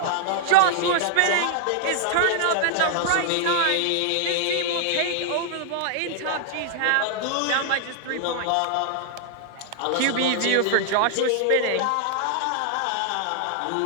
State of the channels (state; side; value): different; both; correlation 0.00